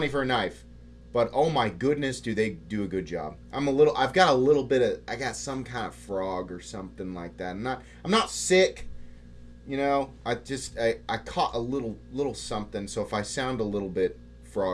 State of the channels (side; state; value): both; identical; correlation 1.00